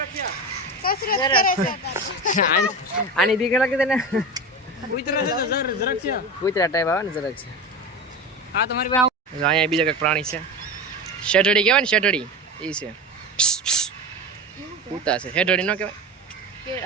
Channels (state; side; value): normal; both; correlation 0.26